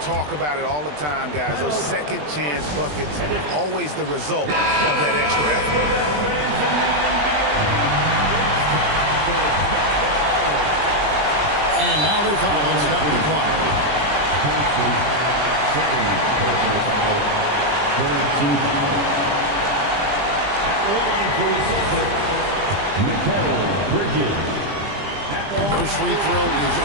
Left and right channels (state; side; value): late; left; 20 ms